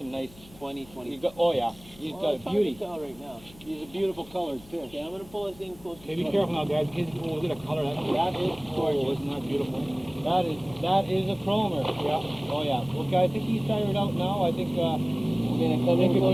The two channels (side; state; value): left; noise; hum, 22 dB below the sound